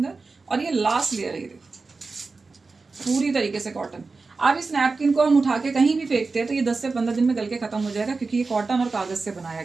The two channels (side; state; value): left; quieter; 4.0 dB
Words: और ये लास्ट लेयर है, ये देखो पूरी तरीके से कॉटन। अब इस नैपकिन को हम उठा के कहीं भी फेंकते हैं तो ये 10 से 15 दिन में गल के खत्म हो जाएगा, क्योंकि ये कॉटन और कागज से बनाया